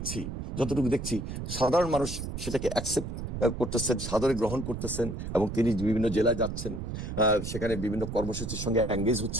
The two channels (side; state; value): right; noise; rumble, 6 dB below the sound